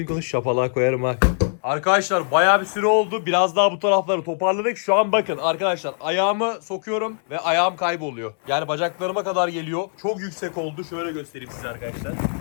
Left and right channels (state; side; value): silent; right; digital silence